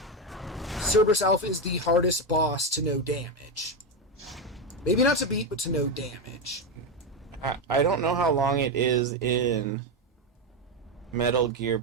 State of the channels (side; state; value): both; normal; correlation 0.10